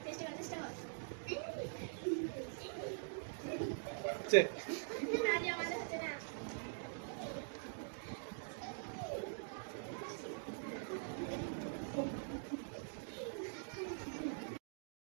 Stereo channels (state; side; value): silent; left; digital silence